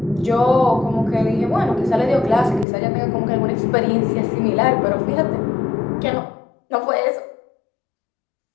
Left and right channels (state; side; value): drops out; right; at 2.7 s